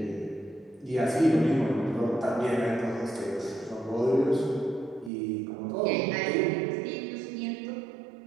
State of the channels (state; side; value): drops out; left; at 5.1 s